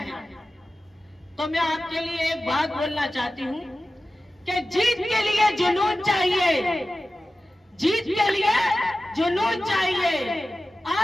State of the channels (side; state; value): both; normal; correlation 0.95